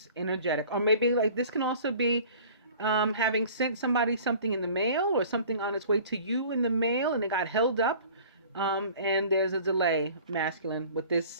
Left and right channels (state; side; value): inverted; both; correlation -0.47